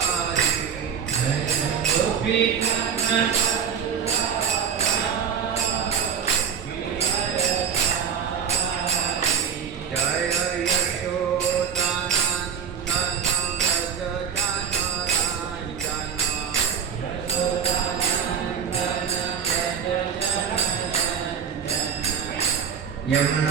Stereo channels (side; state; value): left; quieter; 7.5 dB